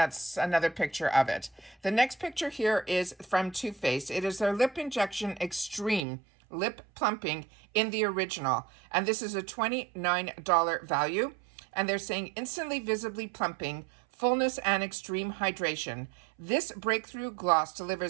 another picture of it. The next picture here is from Too Faced. It is their Lip Injection Extreme Lip Plumping in the original, and this is a $29 value. And they're saying instantly visibly plumping, fullness, and extreme hydration. This breakthrough gloss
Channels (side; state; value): left; drops out; at 6.1 s